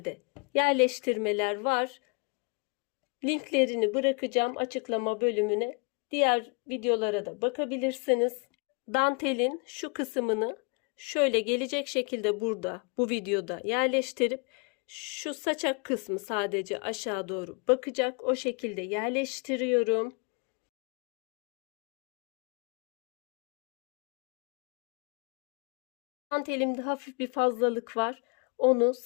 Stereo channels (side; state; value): right; quieter; 34.2 dB